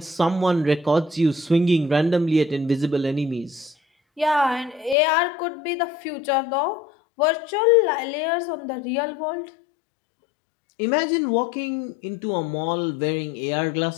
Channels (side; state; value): right; drops out; at 5.0 s